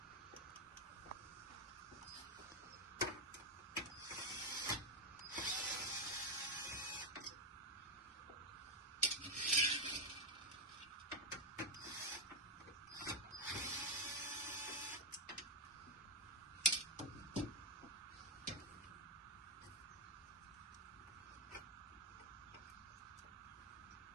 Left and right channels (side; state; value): both; normal; correlation 0.03